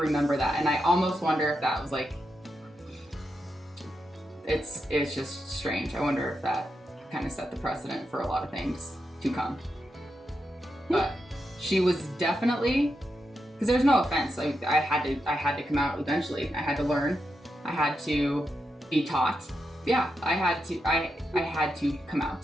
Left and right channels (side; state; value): both; normal; correlation 0.86